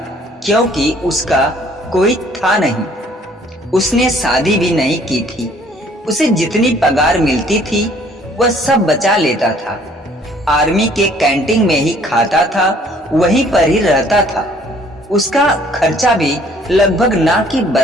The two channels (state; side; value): normal; both; correlation 0.59